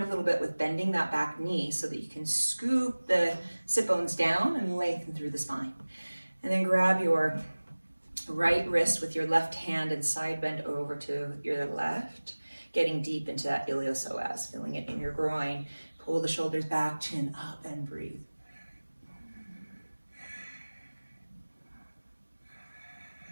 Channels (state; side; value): inverted; both; correlation -1.00